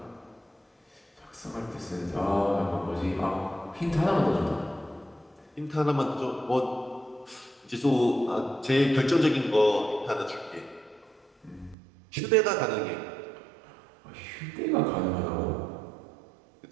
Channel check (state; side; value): drops out; left; at 11.8 s